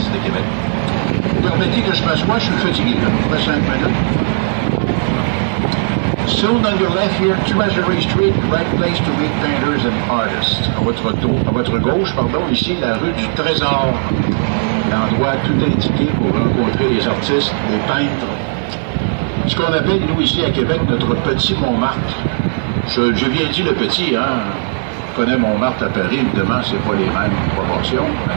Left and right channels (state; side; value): silent; left; digital silence